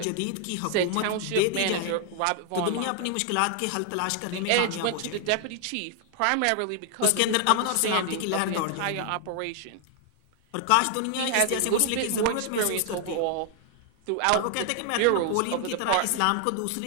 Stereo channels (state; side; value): different; both; correlation 0.00